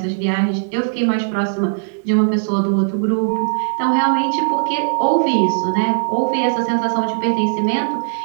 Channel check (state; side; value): silent; left; 56 dB below the other